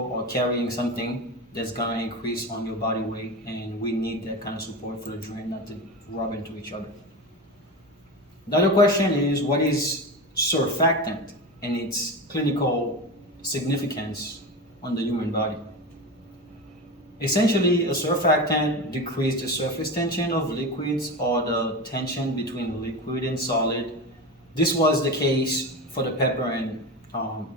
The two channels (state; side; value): normal; both; correlation 0.24